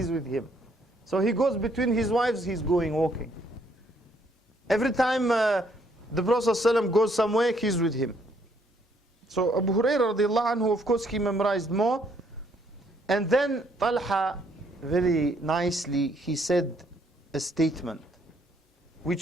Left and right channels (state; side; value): normal; both; correlation 0.68